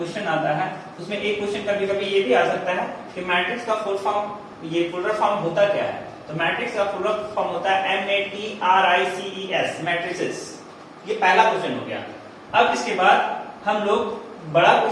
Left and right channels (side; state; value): both; identical; correlation 1.00